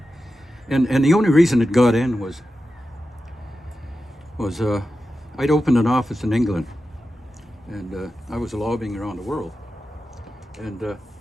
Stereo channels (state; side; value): normal; both; correlation 0.92